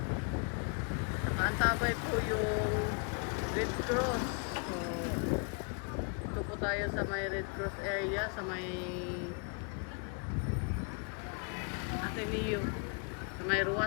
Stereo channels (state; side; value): quieter; right; 39.8 dB